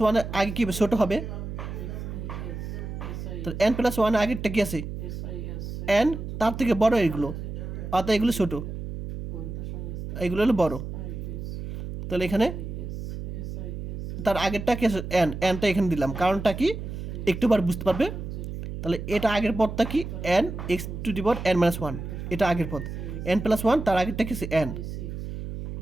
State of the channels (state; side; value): noise; right; hum, 7 dB below the sound